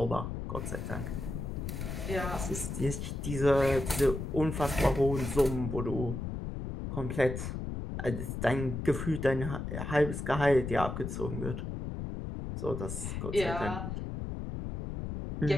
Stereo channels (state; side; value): noise; left; rumble, 5 dB below the sound